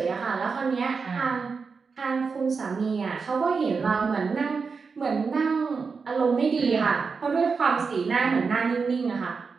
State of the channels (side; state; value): left; quieter; 5.1 dB